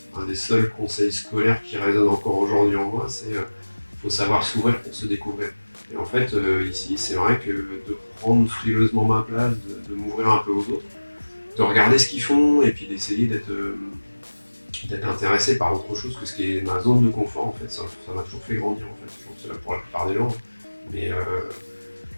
un des seuls conseils scolaires qui résonnent encore aujourd'hui en moi, c'est faut savoir s'ouvrir pour se découvrir. Et en fait, ici, c'est vrai que de prendre frileusement ma place, de m'ouvrir un peu aux autres, de regarder ce qu'ils font et puis d'essayer d'être intéressé par autre chose que ce qui est ma zone de confort, en fait, ça m'a toujours fait grandir, en fait. Je pense que c'est là pour la plupart des gens. Mais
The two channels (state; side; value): inverted; both; correlation -1.00